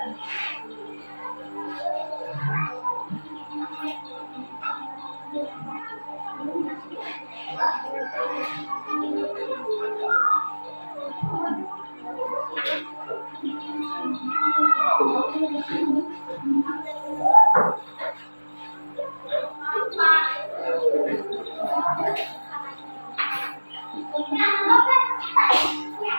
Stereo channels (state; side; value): inverted; both; correlation -1.00